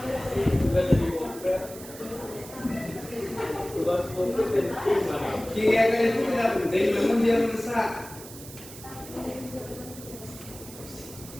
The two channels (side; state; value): right; noise; hiss, 15 dB below the sound